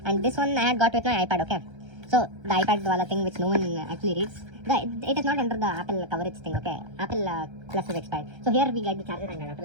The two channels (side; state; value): left; late; 1.3 ms